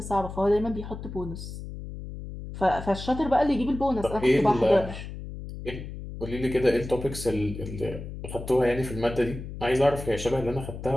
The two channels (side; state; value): left; noise; hum, 10 dB below the sound